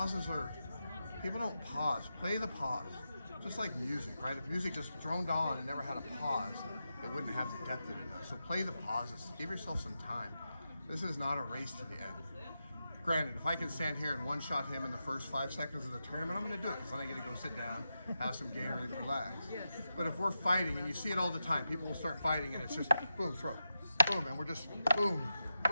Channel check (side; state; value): both; inverted; correlation -0.89